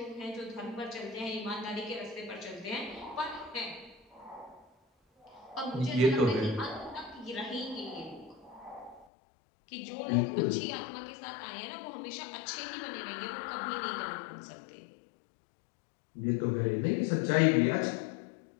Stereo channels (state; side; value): drops out; right; at 9.1 s